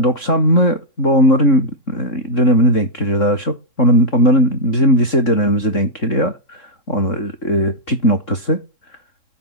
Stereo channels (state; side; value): late; right; 3.7 ms